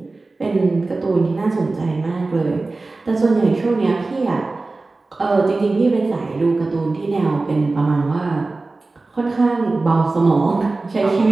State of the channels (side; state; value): left; quieter; 3.4 dB